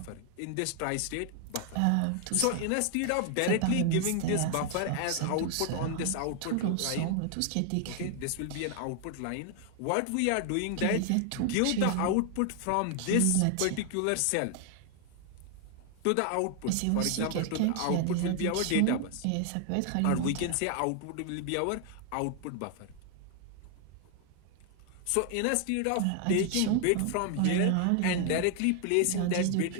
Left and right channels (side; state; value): both; different; correlation 0.00